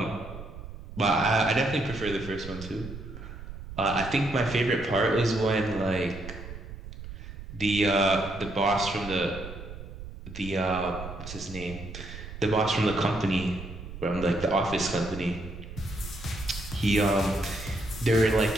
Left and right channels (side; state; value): right; noise; rumble, 12 dB below the sound